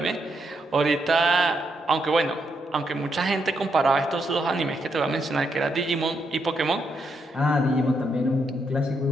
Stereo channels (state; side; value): normal; both; correlation 0.79